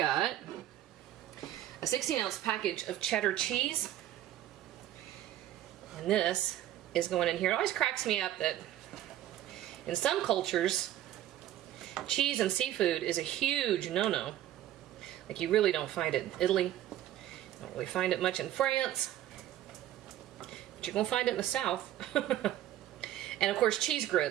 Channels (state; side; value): quieter; left; 12.8 dB